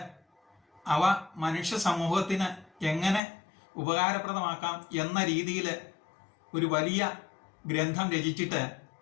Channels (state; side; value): drops out; right; at 3.2 s